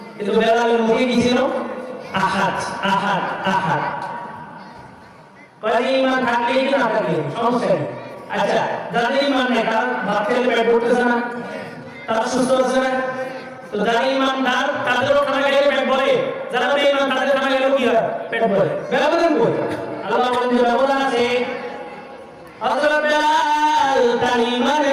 কিন্তু বেলালের মুখে কি ছিল? আহাদ আহাদ আহাদ। কয় ঈমান থাকলে কি না থাকলে সমস্যা নেই। আচ্ছা, যাদের ঈমান নেই তারা ভাত খেলে পেট ভরতেছে না, তারা সুস্থ আছে না? তো যারা ঈমানদার তাদেরও খানা খেলে পেট ভরে, যারা বেঈমান তাদের খানা খেলে কি হয়? পেট ভরে। ব্যবধান কই? আল্লাহ বলেন যে ব্যবধান আছে। হযরত বেলাল তার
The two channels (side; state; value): both; identical; correlation 1.00